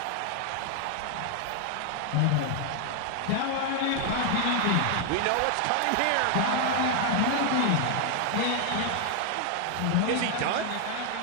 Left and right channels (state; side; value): different; both; correlation 0.00